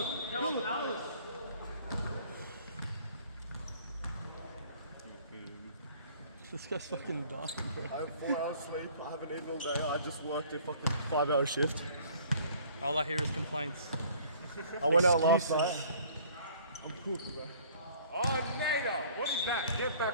This guy's fucking dumb, bro. I have 4 hours sleep. I haven't eaten all day. I just worked a fucking 5-hour shift. All I hear is complaints. I went out last night. I'm cooked, bro. Oh, Nader. What is that? Get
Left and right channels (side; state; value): both; inverted; correlation -0.54